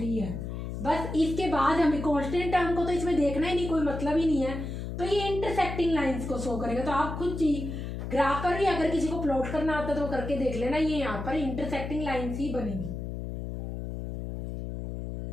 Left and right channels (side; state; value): left; noise; hum, 6 dB below the sound